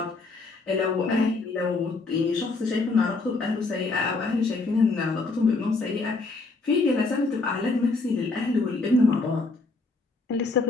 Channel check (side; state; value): right; quieter; 3.6 dB